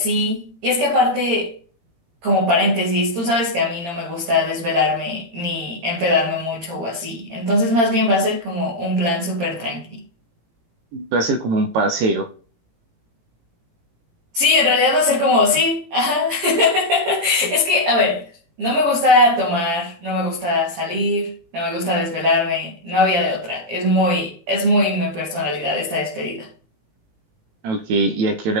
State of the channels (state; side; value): late; left; 17 ms